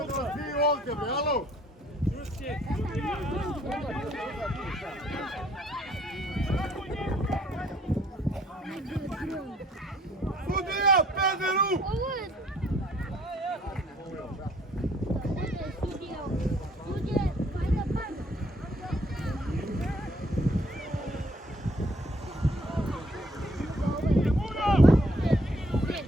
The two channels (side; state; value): both; normal; correlation 0.62